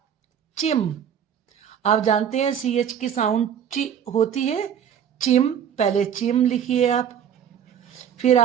चिम, आप जानते हैं CH की साउंड ची होती है, चिम, पहले चिम लिखिए आप। फिर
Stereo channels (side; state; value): left; quieter; 8.7 dB